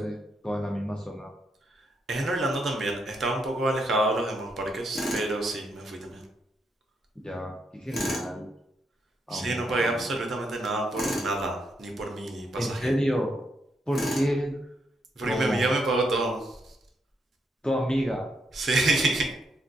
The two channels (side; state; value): both; normal; correlation 0.78